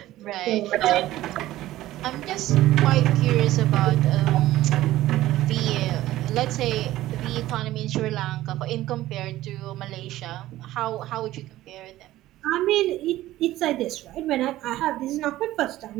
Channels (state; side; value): quieter; left; 15.4 dB